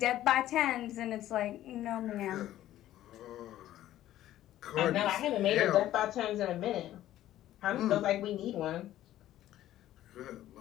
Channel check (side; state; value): right; quieter; 13.4 dB